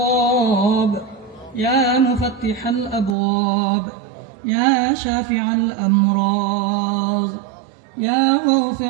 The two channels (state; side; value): drops out; left; at 3.2 s